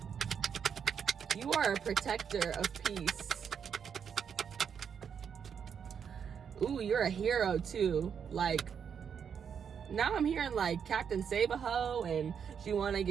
You are a protector of peace. Ooh, you're a hero too. Like, now I'm hearing like Captain Save-A-Ho and she wanna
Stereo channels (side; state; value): left; quieter; 7.3 dB